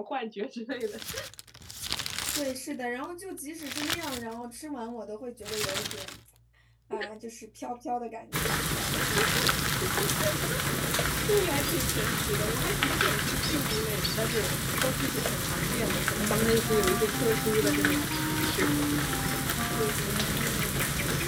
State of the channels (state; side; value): identical; both; correlation 1.00